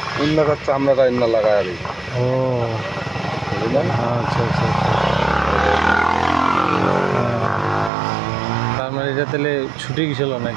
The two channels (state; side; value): drops out; left; at 7.9 s